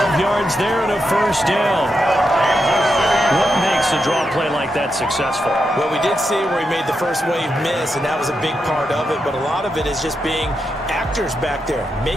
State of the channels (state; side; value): normal; both; correlation 0.85